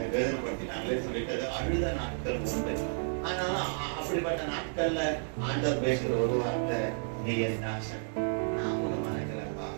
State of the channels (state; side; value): silent; left; digital silence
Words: வேதனைப்படுத்தினாங்களே சொல்லிட்டு அழுத நாட்கள் உண்டு. ஆனால அப்படிப்பட்ட நாட்கள்ல ஆண்டவர் பேசுற ஒரு வார்த்தை, நீ என் தாசன், நான் உன்னை மறக்கலப்பா,